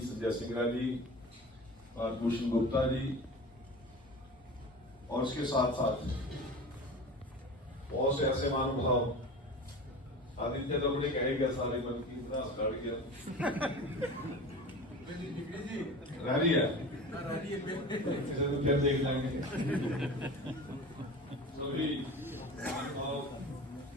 संजय सिंगरा जी और भूषण गुप्ता जी, और उसके साथ साथ बहुत से ऐसे महानुभाव, आदित्य तो मुझे कहेगा सारे मन की इतना काट गया रह रही है, इसे तो फिर देख लेंगे सभी महानुभाव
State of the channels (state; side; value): normal; both; correlation 0.34